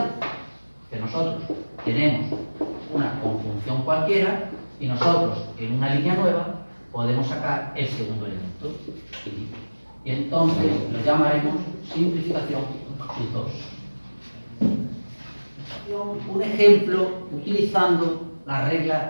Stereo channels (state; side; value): inverted; both; correlation -1.00